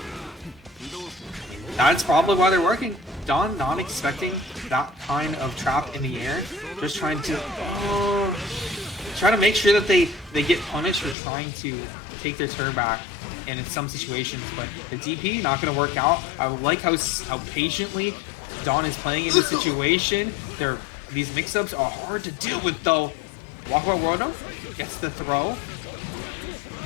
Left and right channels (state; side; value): drops out; right; at 11.2 s